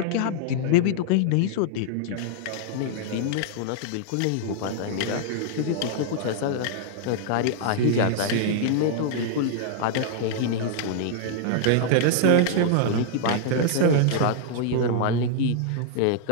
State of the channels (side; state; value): both; different; correlation -0.01